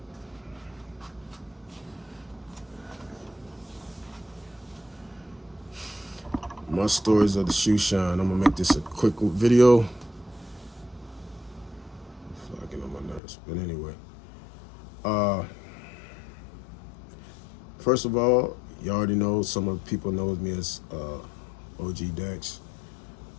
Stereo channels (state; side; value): drops out; right; at 13.2 s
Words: My stories of the shoe shine. I'm gonna make this a quick video. Fucking on my nerves, but anyway. Uh, First of all, you already know some of the people knows me as OG Dax,